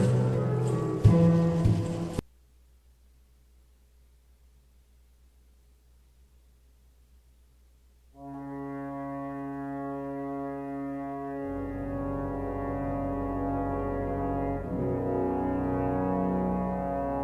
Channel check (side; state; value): both; identical; correlation 1.00